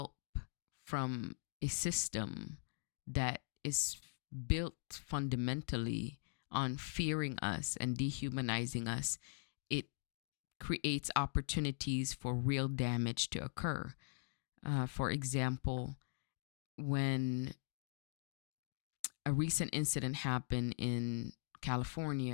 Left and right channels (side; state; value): right; silent; digital silence